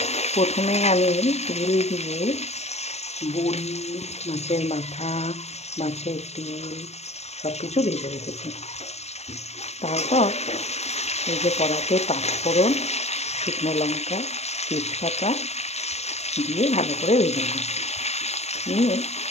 প্রথমে আমি তেল দিয়ে বড়ি, মাছের মাথা, মাছের তেল সব কিছু ভেজে রেখেছি। তারপর এই যে কড়াতে পাঁচফোড়ন, শুকনো লঙ্কা, তেজপাতা দিয়ে ভালো করে ভেজে নিয়ে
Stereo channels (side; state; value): right; late; 0.31 ms